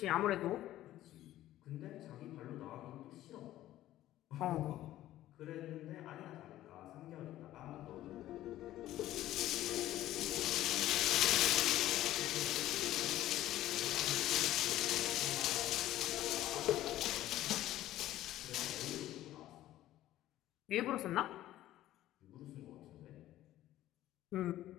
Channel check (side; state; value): right; quieter; 14.1 dB